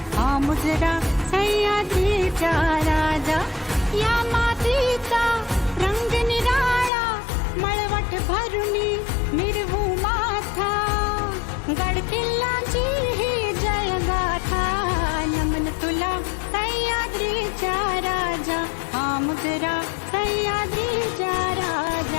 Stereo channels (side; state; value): right; drops out; at 6.9 s